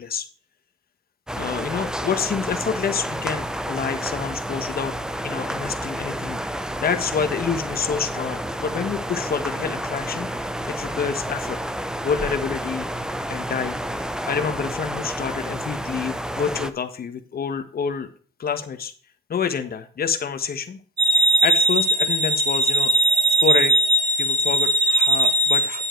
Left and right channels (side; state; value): both; normal; correlation 0.33